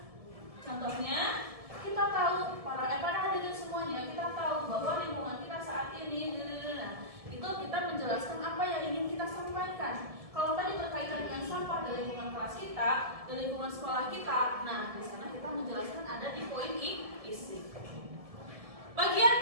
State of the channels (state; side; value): late; left; 1.7 ms